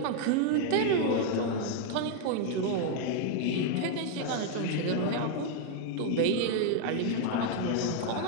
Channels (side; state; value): both; different; correlation 0.00